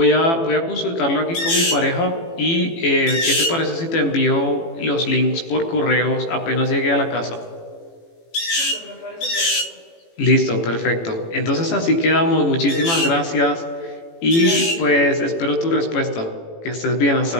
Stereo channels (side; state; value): right; late; 18 ms